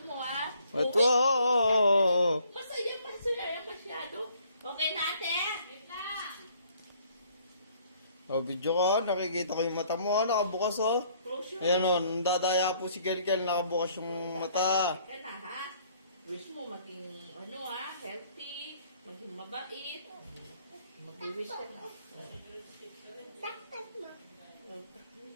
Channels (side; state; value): both; inverted; correlation -0.62